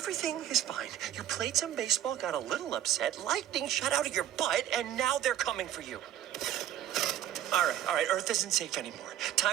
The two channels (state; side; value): quieter; left; 11.4 dB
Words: Everything is fine. You played some baseball, got a little upset, lightning shot out of your butt, and now they're coming for you. All right, Earth isn't safe anymore.